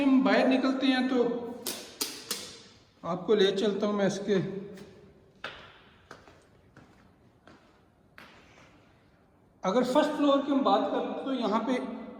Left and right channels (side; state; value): both; identical; correlation 1.00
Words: हम बाहर निकलते हैं तो आपको ले चलता हूँ मैं इसके अगर फर्स्ट फ्लोर की हम बात करें तो यहाँ पे